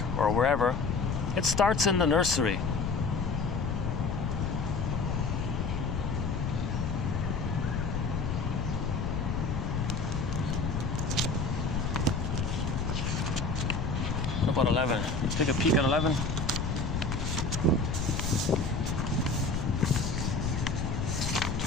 or wherever. It starts in the nursery. What about 11? Let's take a peek at 11.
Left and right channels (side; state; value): left; noise; rumble, 1 dB below the sound